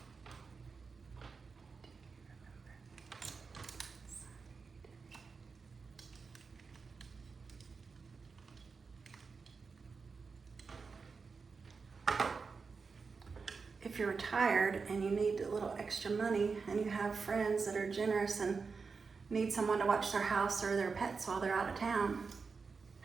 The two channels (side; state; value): left; quieter; 4.9 dB